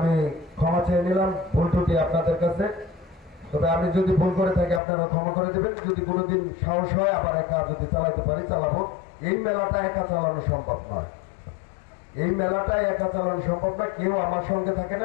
ক্ষমা চেয়ে নিলাম ভুল ত্রুটি আপনাদের কাছে। তবে আমি যদি ভুল করে থাকি আপনারা ক্ষমা করে দেবেন। যদি কোনোদিন সাহস হয় আবার একা যদি চালাতে পারি চালাবো। এই মেলাটা একা চালানো সম্ভব নয়, এই মেলাটাই একা চালানো সম্ভব না, কেউ আমার সঙ্গে থাকে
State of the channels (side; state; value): right; drops out; at 4.8 s